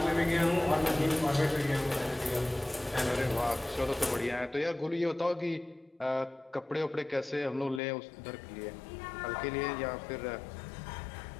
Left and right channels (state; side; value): drops out; right; at 7.8 s